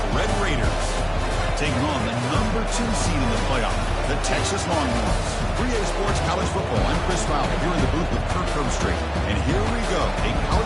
Red Raiders, taking on the number 2 seed in the playoff, the Texas Longhorns. 3A Sports College Football, I'm Chris Fowler, here in the booth with Kirk Herbstreit. And here we go, a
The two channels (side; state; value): both; identical; correlation 1.00